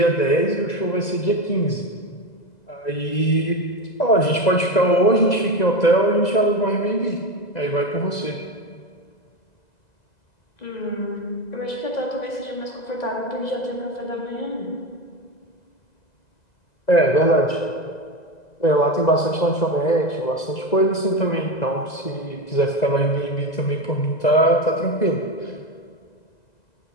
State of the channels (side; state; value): right; late; 2.0 ms